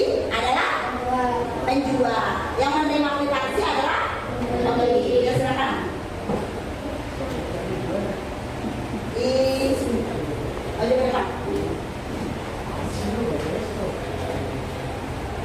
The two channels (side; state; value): both; identical; correlation 1.00